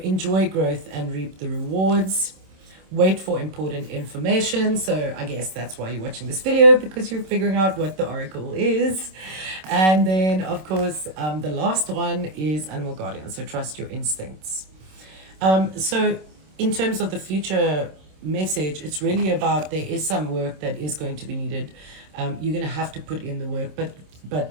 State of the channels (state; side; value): late; left; 26 ms